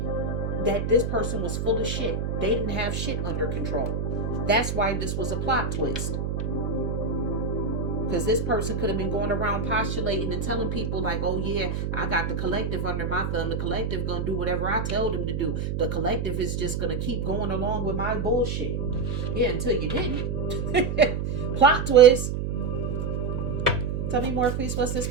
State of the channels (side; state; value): right; noise; hum, 1 dB below the sound